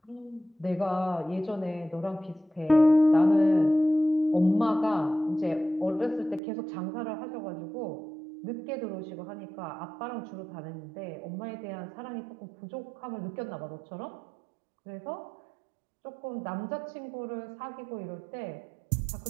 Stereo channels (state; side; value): drops out; left; at 6.4 s